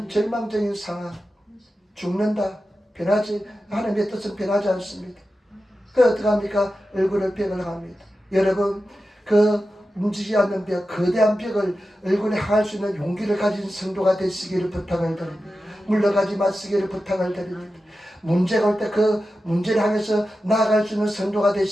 절망적인 상황, 죽는다, 변하지, 하나님의 뜻은 변하지 않습니다. 그 어떻게 합니까? 얼굴을 벽을 합니다. 여러분 그 움직이지 않는 벽, 거대한 벽을 얼굴에 향할 수 있는 용기를 가진 성도가 되시기를 부탁을 드립니다. 물러가지 마시기를 부탁을 드립니다. 문제가 올 때 그 문제를 향해서 나아갈 수 있는 성도가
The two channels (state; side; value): normal; both; correlation 0.92